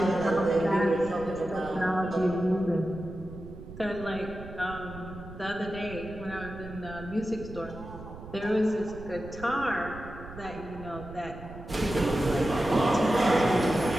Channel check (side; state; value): right; noise; rumble, 14 dB below the sound